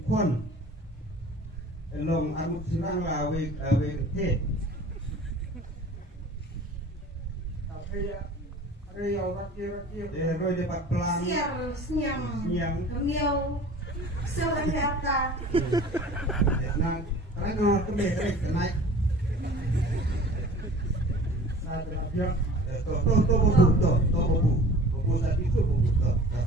kon. Long armuk sinang la we te. Tapi ya Riau rakir. Roy dapat pelang. Siang. Kamiau. Seorang kata. Nah, karena kemeh naik. Nah, terakhir. Buku tadi itu buku.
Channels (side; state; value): both; normal; correlation 0.44